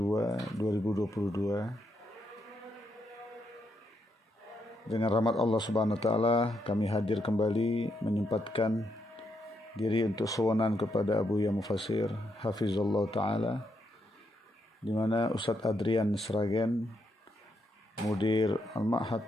2022, dengan rahmat Allah Subhanahu wa taala kami hadir kembali menyempatkan diri untuk suwanan kepada Abuya Mufassir hafizallahu taala, di mana Ustadz Adrian Sragen, Mudir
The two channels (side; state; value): both; normal; correlation 0.79